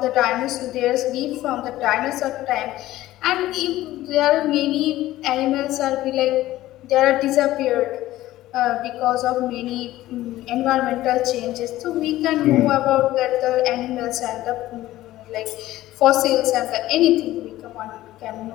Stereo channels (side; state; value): right; quieter; 15.5 dB